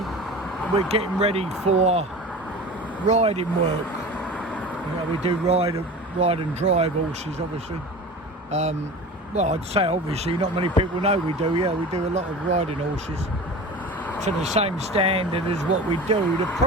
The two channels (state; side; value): normal; both; correlation 0.35